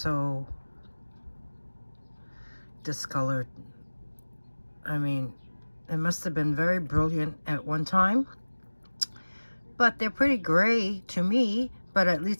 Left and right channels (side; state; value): both; inverted; correlation -1.00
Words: discolored. I mean, it must have been very brilliant at one time, but they're pretty gray to me, but at